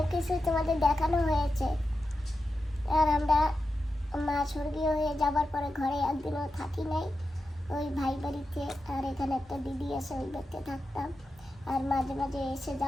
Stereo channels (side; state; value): both; normal; correlation 0.90